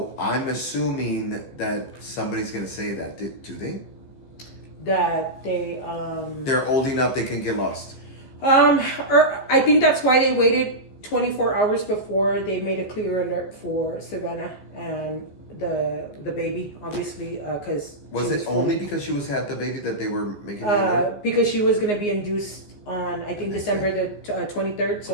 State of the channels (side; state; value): right; late; 15 ms